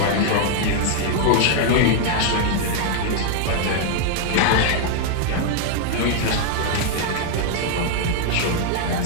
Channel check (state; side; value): different; both; correlation 0.00